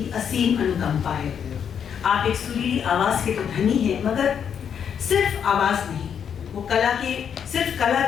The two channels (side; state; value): right; quieter; 7.9 dB